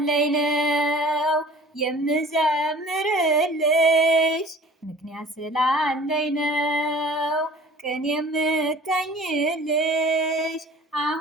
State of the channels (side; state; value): both; normal; correlation 0.46